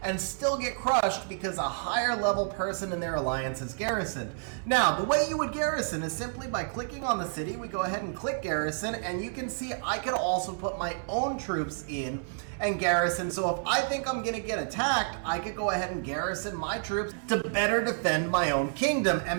and still get crushed because a higher level person in their alliance is garrisoned. Now, the way you would garrison is simply by clicking on the city. We go ahead and click garrison, and you can see I could also put my own troops in and garrison. So if I think I'm going to get attacked, I could go ahead and garrison my troops to better defend my own kingdom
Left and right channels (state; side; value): silent; left; digital silence